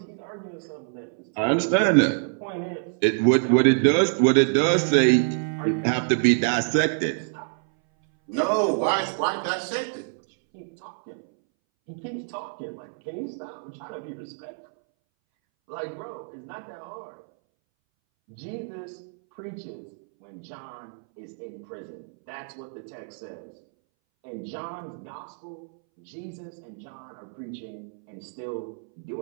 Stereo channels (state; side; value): silent; left; 60 dB below the other